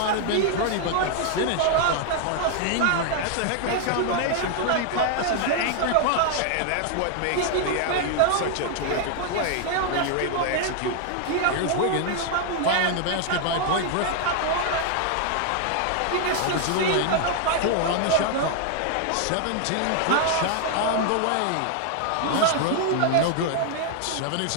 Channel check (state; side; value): different; both; correlation 0.00